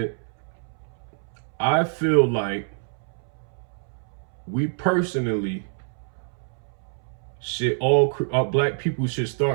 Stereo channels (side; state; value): left; silent; 61 dB below the other